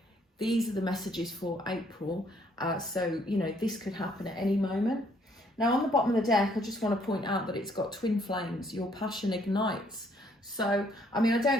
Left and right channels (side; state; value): both; normal; correlation 0.66